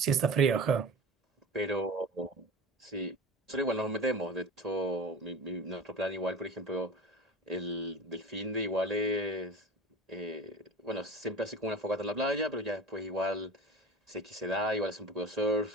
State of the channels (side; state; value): both; normal; correlation 0.35